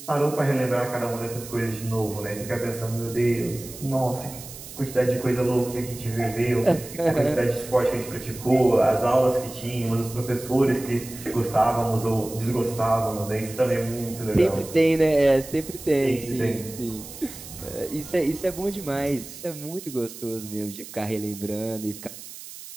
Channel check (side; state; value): right; noise; hiss, 14 dB below the sound